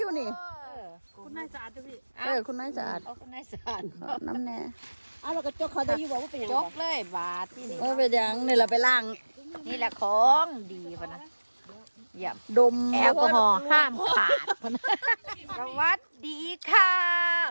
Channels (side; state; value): both; inverted; correlation -1.00